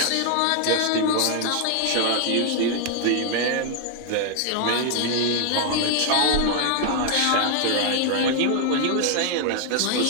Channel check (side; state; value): both; different; correlation 0.00